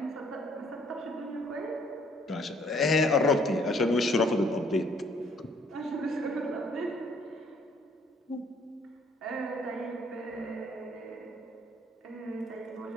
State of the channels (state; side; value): normal; both; correlation 0.62